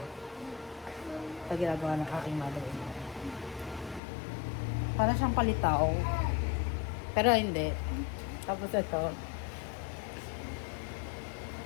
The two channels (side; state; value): right; drops out; at 4.0 s